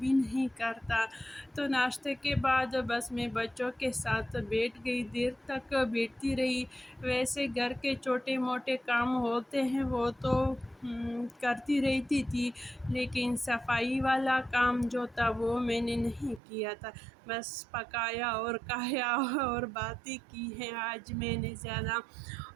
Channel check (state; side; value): drops out; left; at 16.4 s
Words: نہیں کرتا۔ تو ناشتے کے بعد بس میں بچوں کے ساتھ بیٹھ گئی، دیر تک بیٹھتی رہی۔ ویسے گھر کے چھوٹے موٹے کام ہوتے ہیں وہ تو کرتی رہتی تھی، لیکن صفائی والا کام جو تھا وہ میں نے نہیں کیا تھا، بس پکایا اور کھایا اور باتیں کی ہیں آج میں نے زیادہ۔